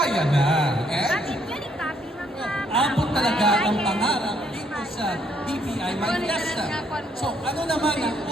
na. And abot talaga ang pangarap dito sa BPI My Fiesta. So ano naman ang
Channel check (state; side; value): normal; both; correlation 0.69